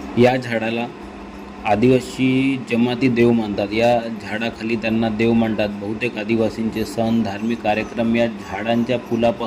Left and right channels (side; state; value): both; identical; correlation 1.00